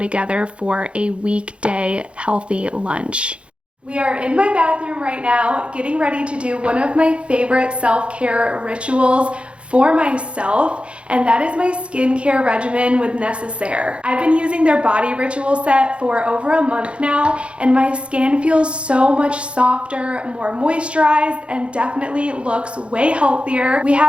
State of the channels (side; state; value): left; late; 0.059 ms